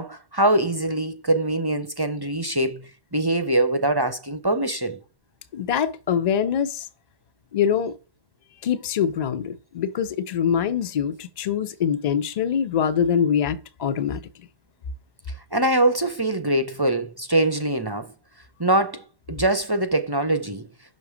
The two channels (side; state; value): left; late; 1.1 ms